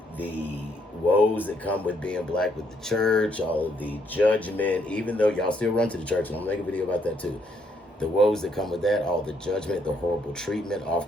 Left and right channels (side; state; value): both; normal; correlation 0.72